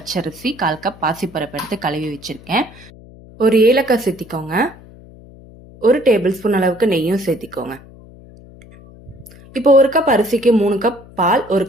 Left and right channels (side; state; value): left; noise; hum, 21 dB below the sound